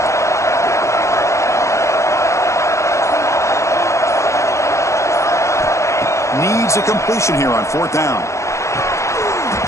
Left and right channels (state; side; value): late; right; 0.14 ms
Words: Needs a completion here on 4th down.